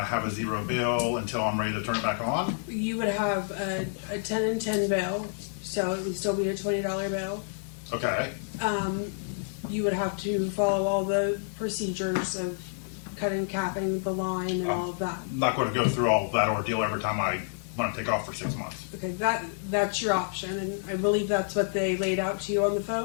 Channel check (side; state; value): right; silent; digital silence